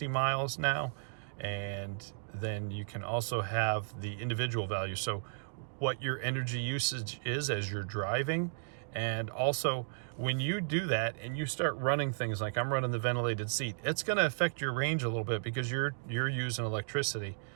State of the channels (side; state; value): left; silent; digital silence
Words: miles now, and then you can also have the individual value, so what your energy usage is as you're driving. And also, when you do that and you start running things like I'm running the ventilated seat, it's going to affect your range a little bit because you're using electricity.